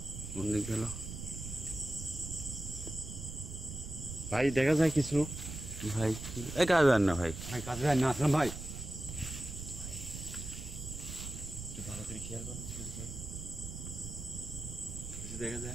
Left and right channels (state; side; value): noise; right; rumble, 8 dB below the sound